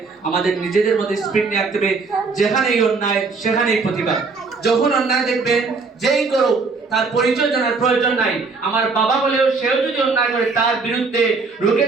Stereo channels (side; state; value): left; quieter; 4.3 dB